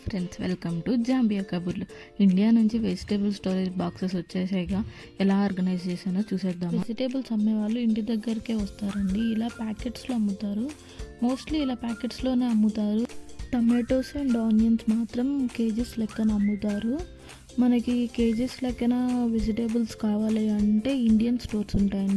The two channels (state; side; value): identical; both; correlation 1.00